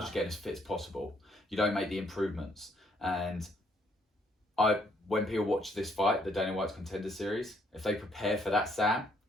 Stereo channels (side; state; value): both; normal; correlation 0.69